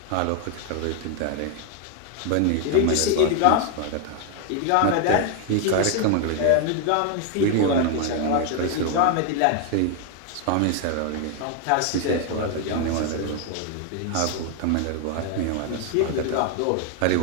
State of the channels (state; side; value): different; both; correlation 0.00